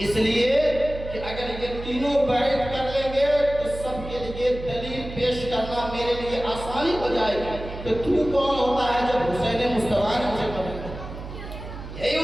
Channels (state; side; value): noise; right; hum, 10 dB below the sound